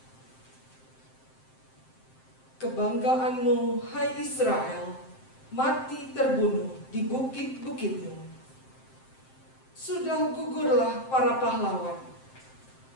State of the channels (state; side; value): late; right; 7.7 ms